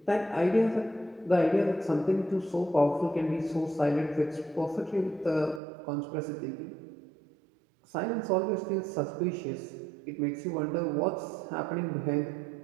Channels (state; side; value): drops out; left; at 5.6 s